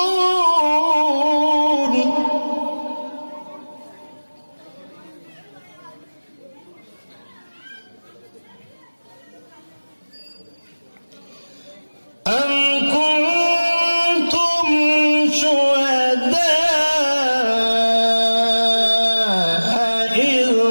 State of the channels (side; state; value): both; inverted; correlation -1.00